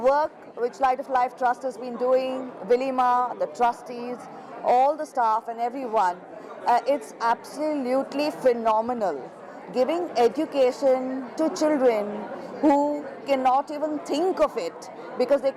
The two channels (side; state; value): both; identical; correlation 1.00